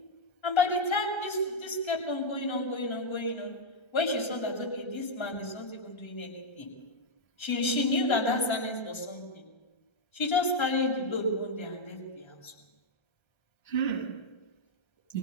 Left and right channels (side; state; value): right; late; 1.3 ms